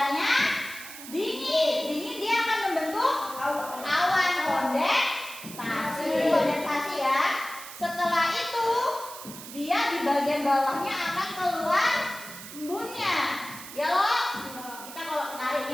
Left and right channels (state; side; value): noise; right; hiss, 13 dB below the sound